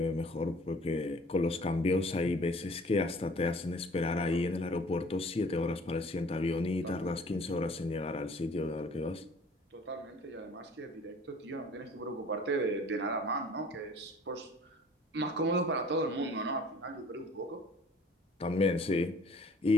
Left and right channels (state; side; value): normal; both; correlation 0.52